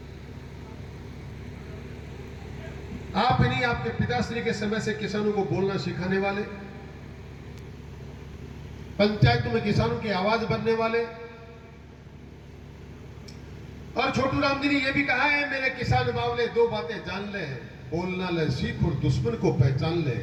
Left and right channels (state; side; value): identical; both; correlation 1.00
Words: आप नहीं, आपके पिताश्री के समय से किसानों को बोलना सिखाने वाले, पंचायतों में किसानों की आवाज बनने वाले। और छोटू राम जी ने यह भी कहा है, मेरे किसान बावले दो बातें जान ले, बोलना ले सीख और दुश्मन को पहचान ले।